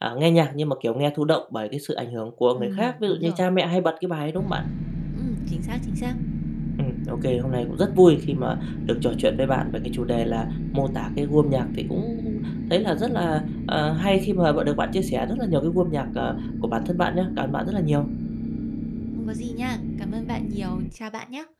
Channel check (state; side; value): identical; both; correlation 1.00